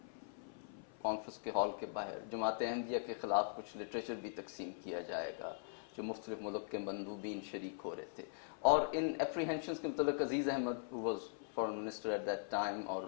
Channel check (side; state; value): right; silent; 50 dB below the other